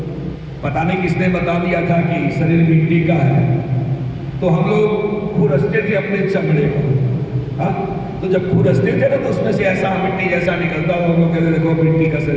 पता नहीं किसने बता दिया था कि शरीर मिट्टी का है, तो हम लोग खुरसते थे अपने चमड़े को। तो जब खुरसते थे ना तो उसमें से ऐसा मिट्टी जैसा निकलता, हम लोग कहते देखो मिट्टी का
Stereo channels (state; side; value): identical; both; correlation 1.00